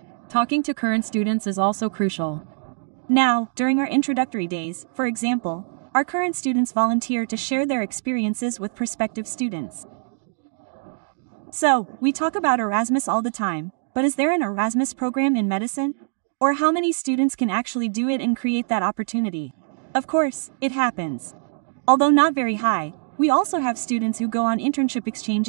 Talking to current students is also crucial. Now, during our introductory days, for example, our current students volunteer to share their experiences with prospective students. So, we talk about Erasmus all the time, but is there an Erasmus program in medicine? Or how many students can actually do it and create that opportunity? Of course, it happens. Although not very high, we also have students who go on internship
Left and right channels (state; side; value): silent; left; digital silence